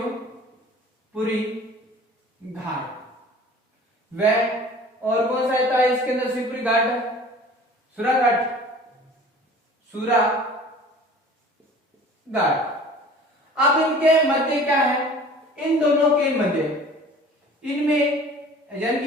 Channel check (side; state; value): both; normal; correlation 0.45